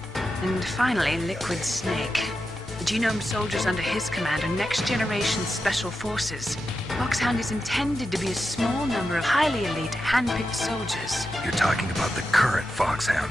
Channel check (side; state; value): both; normal; correlation 0.89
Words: and finally Liquid Snake. The Genome soldiers under his command are next-generation special forces. Foxhound is intended to be a small number of highly elite, hand-picked soldiers. You're talking about the current